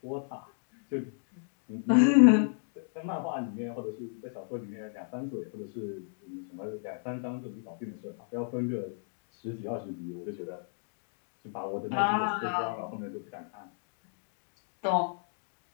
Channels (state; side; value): silent; right; digital silence